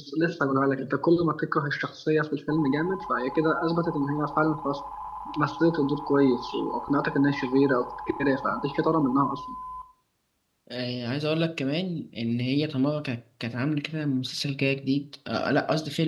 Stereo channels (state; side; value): identical; both; correlation 1.00